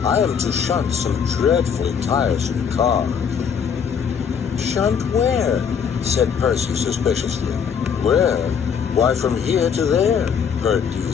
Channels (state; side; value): quieter; right; 7.1 dB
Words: I am to shunt some dreadfully tiresome cars." "Shunt where?" said Percy suspiciously. "Where? Why, from here to there," purred